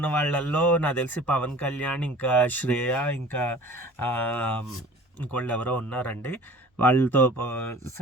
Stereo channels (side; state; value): both; normal; correlation 0.44